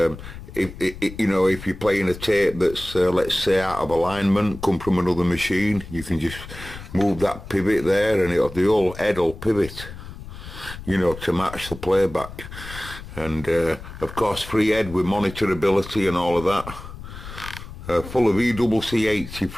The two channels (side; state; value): left; noise; rumble, 13 dB below the sound